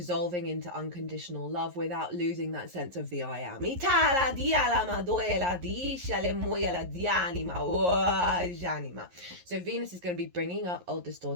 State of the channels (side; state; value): left; late; 11 ms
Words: into unconditional love without losing that sense of the I am. So Venus is going to be bringing up old